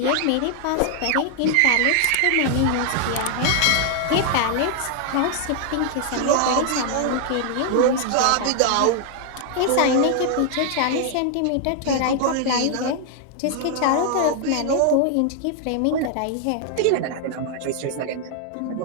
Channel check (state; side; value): different; both; correlation 0.00